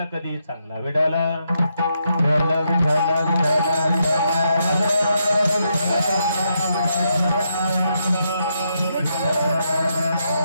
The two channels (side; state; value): both; inverted; correlation -0.80